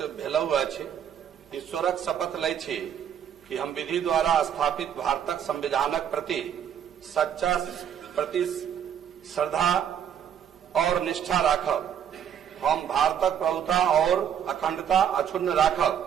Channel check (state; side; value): quieter; left; 9.0 dB